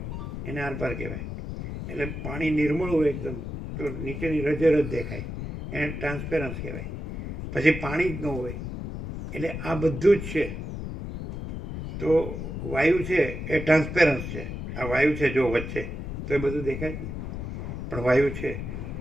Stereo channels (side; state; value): left; noise; rumble, 6 dB below the sound